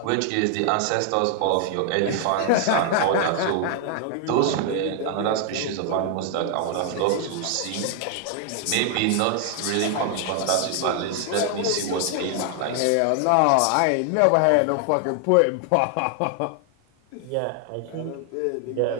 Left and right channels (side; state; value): both; different; correlation 0.00